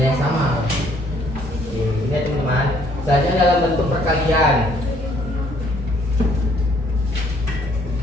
yang sama. Ini ya teman-teman. Selanjutnya dalam bentuk perkalian.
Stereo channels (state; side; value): normal; both; correlation 0.64